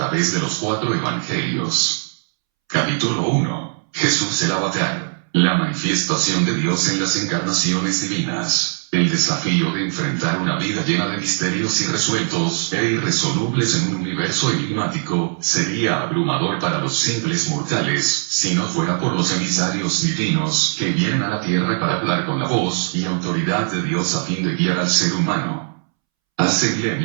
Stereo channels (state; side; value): silent; left; 66 dB below the other